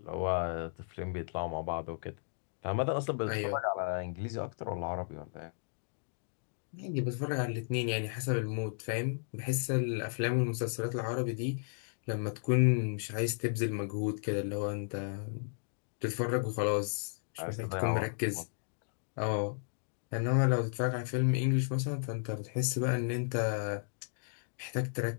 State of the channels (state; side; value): silent; right; digital silence